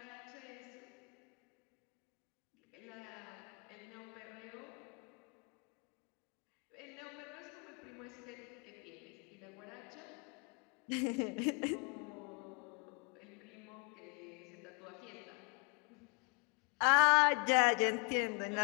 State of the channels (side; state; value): right; quieter; 33.5 dB